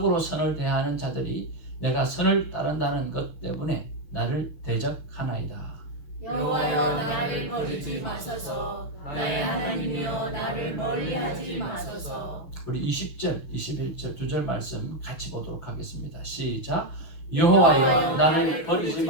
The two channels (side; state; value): right; late; 6.4 ms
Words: 선을 대하는 자들이 내가 선을 따른다는 것 때문에 나를 대적하나이다. 여호와여, 나를 버리지 마소서. 나의 하나님이여, 나를 멀리하지 마소서. 우리 20절, 21절 두 절 말씀 같이 보도록 하겠습니다. 시작. 여호와여, 나를 버리지